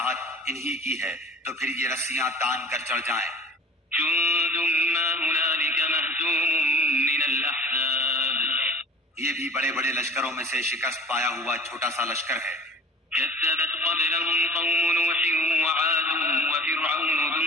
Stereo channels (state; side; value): normal; both; correlation 0.45